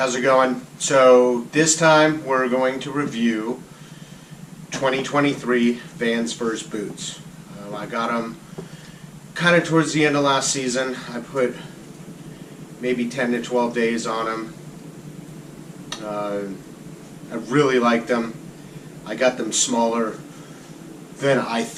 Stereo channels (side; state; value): both; identical; correlation 1.00